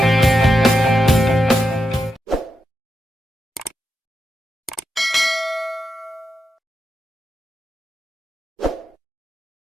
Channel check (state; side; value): normal; both; correlation 0.87